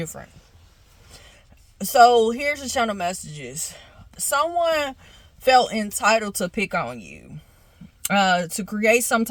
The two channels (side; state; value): both; identical; correlation 1.00